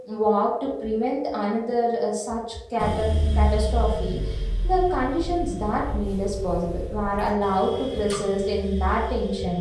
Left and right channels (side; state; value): both; identical; correlation 1.00